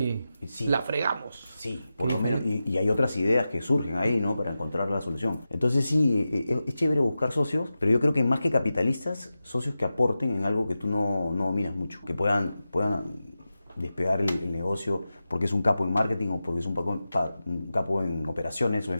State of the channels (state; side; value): inverted; both; correlation -0.92